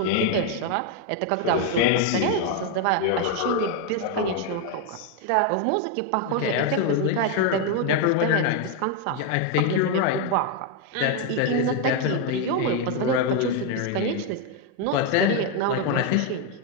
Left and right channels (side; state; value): both; different; correlation 0.01